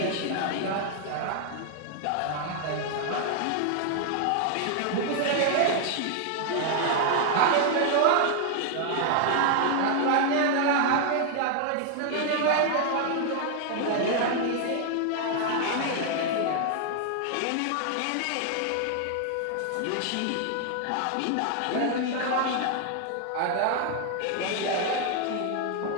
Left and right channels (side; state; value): both; different; correlation 0.00